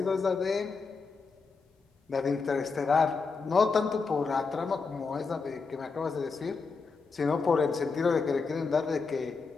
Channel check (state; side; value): quieter; right; 4.6 dB